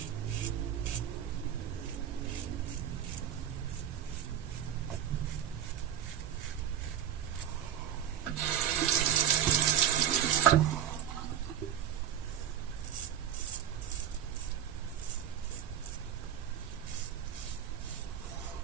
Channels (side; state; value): left; quieter; 9.8 dB